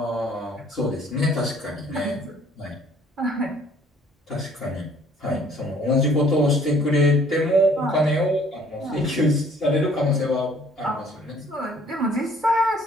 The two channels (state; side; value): normal; both; correlation 0.58